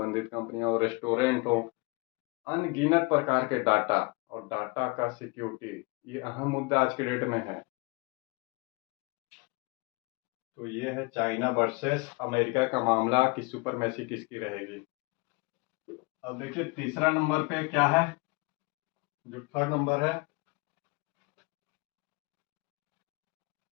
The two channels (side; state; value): right; quieter; 28.2 dB